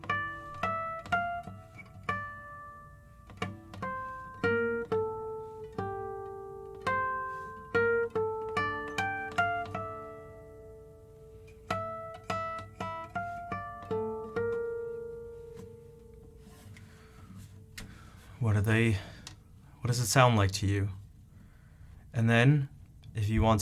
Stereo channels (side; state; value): both; identical; correlation 1.00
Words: What does it sound like to you? And then, if you want